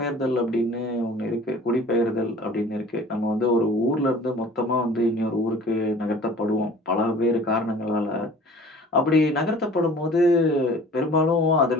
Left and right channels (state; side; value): normal; both; correlation 0.46